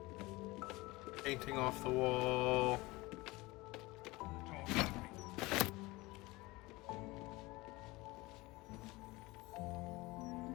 Painting off the wall.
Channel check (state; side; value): quieter; right; 21.8 dB